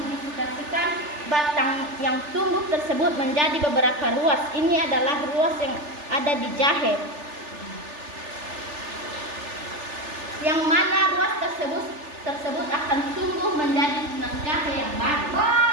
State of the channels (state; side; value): late; left; 3.4 ms